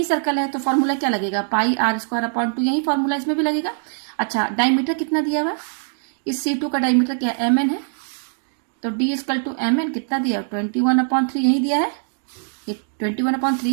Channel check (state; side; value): silent; left; digital silence